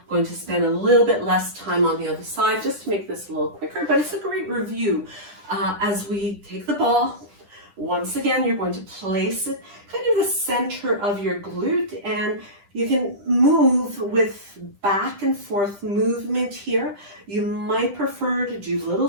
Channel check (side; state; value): left; late; 10 ms